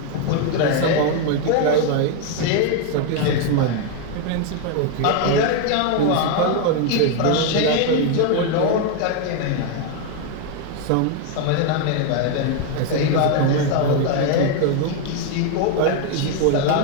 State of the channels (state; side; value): different; both; correlation 0.01